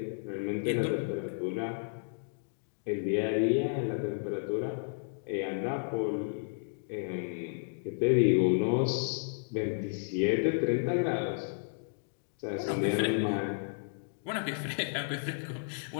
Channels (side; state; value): right; silent; digital silence